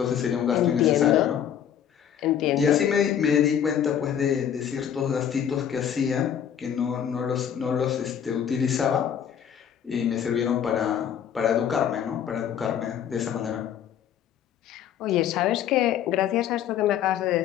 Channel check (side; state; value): right; quieter; 9.2 dB